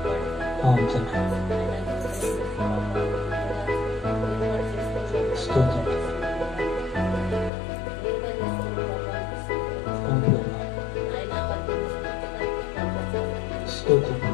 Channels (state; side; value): drops out; right; at 7.5 s